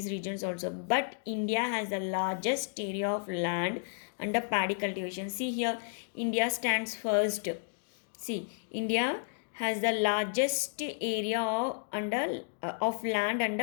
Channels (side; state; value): right; silent; digital silence